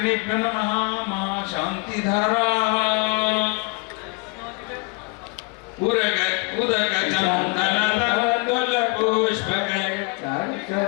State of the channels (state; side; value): quieter; right; 30.2 dB